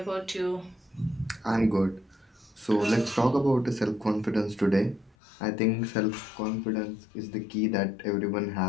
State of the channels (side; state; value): right; drops out; at 5.2 s